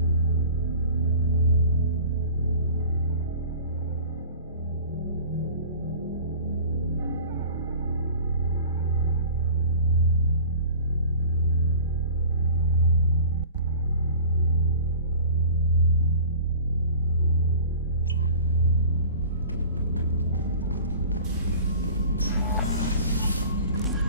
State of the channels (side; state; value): both; inverted; correlation -0.42